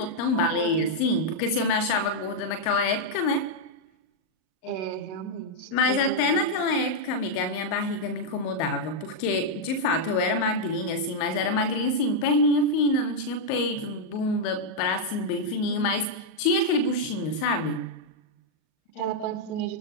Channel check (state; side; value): late; right; 38 ms